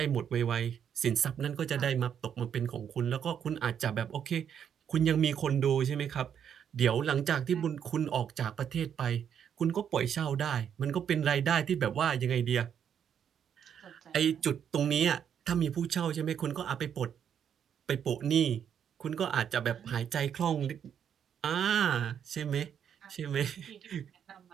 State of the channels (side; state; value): left; quieter; 8.5 dB